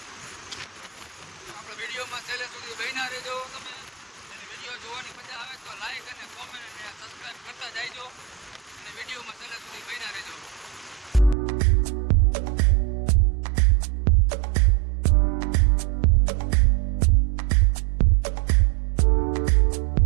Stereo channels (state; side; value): drops out; left; at 11.4 s